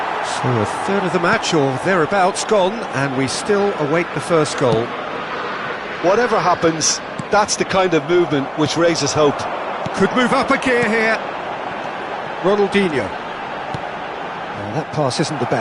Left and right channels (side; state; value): both; identical; correlation 1.00